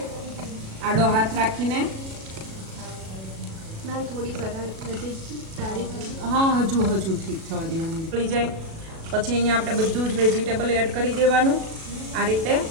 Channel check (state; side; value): late; left; 37 ms